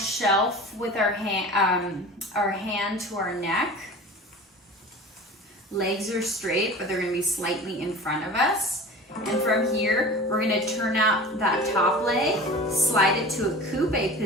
with our hand to our neck. Legs are straight, but they're going to be slightly in front of us. And from here, we're gonna turn out that top leg, slide it to a coupe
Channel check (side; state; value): both; normal; correlation 0.37